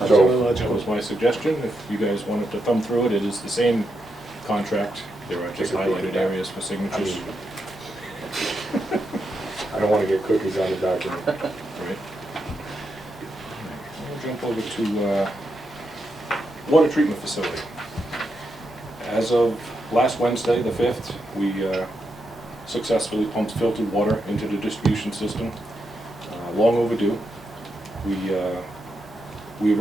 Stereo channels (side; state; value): both; normal; correlation 0.84